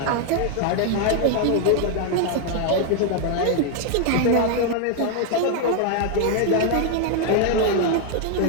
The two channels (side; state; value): both; different; correlation 0.00